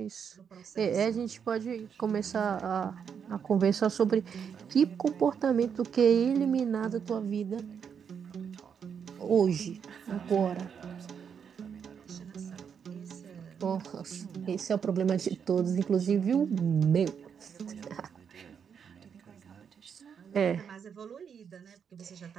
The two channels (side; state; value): left; quieter; 7.2 dB